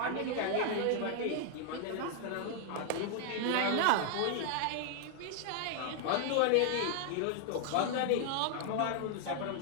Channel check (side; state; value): both; different; correlation 0.00